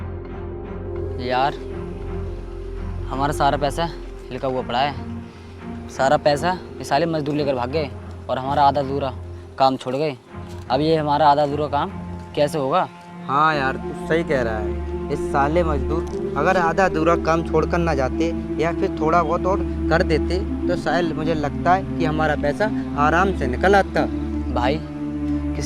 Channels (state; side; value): identical; both; correlation 1.00